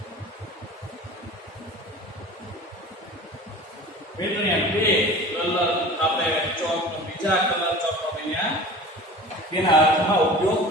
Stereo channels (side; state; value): both; normal; correlation 0.39